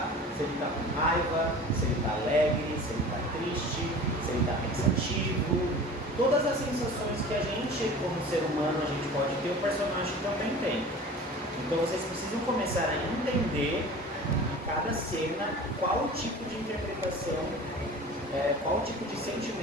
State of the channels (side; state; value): both; normal; correlation 0.40